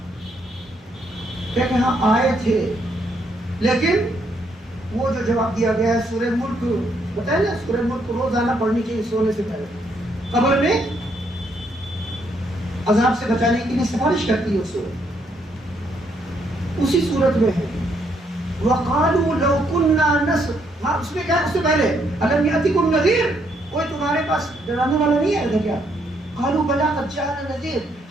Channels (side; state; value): both; normal; correlation 0.73